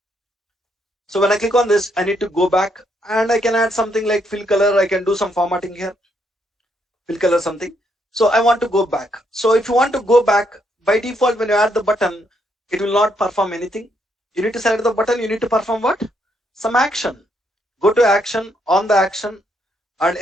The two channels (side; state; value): both; normal; correlation 0.75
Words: So when I click on this, I need to go back and I can add something like fill color. I can do some formatting here. Fill color something. So I want to go back. So if you want to go back, by default, when you add the button, it will not perform anything. You need to select the button. You need to perform what? Some action. Go to action, on the action, and